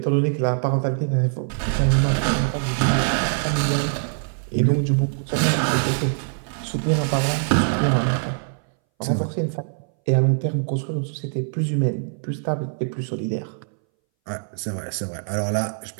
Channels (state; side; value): silent; left; 61 dB below the other